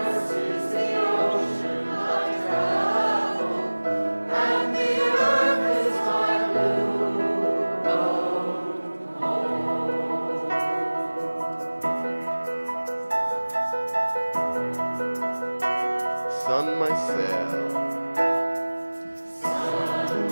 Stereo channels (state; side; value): inverted; both; correlation -1.00